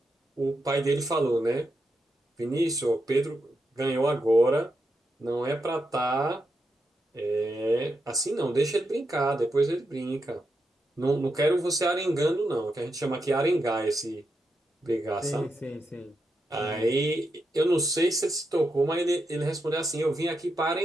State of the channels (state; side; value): normal; both; correlation 0.85